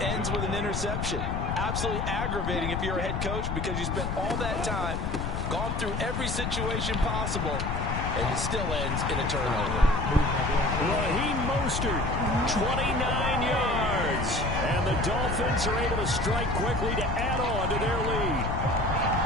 ends with an interception. Absolutely aggravating if you're a head coach because you spent all that time, gone through every situation possible, and it still ends in a turnover. Raheem Mostert, 29 yards. And the Dolphins are able to strike quickly to add on to their lead.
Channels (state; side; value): noise; left; rumble, 2 dB below the sound